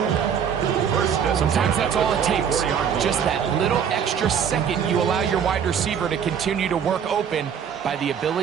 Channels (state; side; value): quieter; left; 7.8 dB